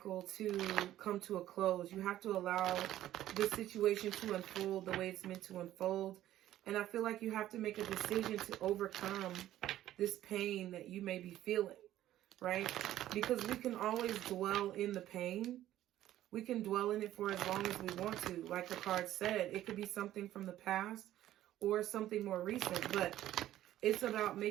to come to a close. You have to allow this situation to unfold the way it's meant to unfold. And I feel like you have to make a decision to overcome this pain that you may be feeling, right? Because we can always dwell in the pain. We can dwell in it for as long as we want to. Like the card said, it could be something from the past or something more recent. But it's about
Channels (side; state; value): left; quieter; 13.3 dB